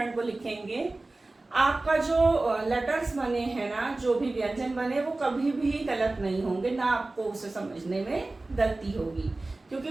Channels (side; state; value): left; quieter; 3.1 dB